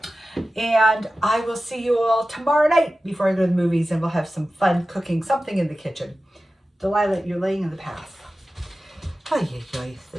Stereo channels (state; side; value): normal; both; correlation 0.94